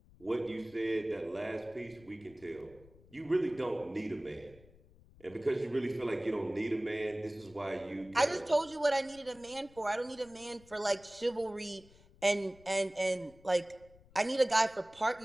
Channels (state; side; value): noise; left; rumble, 25 dB below the sound